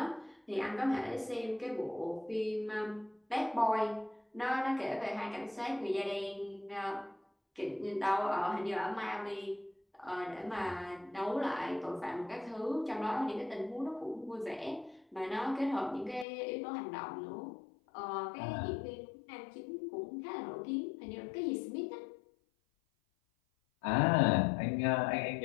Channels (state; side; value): drops out; right; at 16.2 s